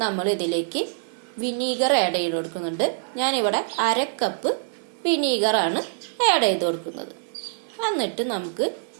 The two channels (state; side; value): silent; left; digital silence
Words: നമ്മൾ ഇതിലേക്ക് വിനീഗർ ആഡ് ചെയ്ത് കൊടുക്കുന്നുണ്ട്. ഞാനിവിടെ 1/2 കപ്പ് വിനീഗറാണ് ആഡ് ചെയ്ത് കൊടുക്കുന്നത്. എന്നിട്ട് നമുക്ക്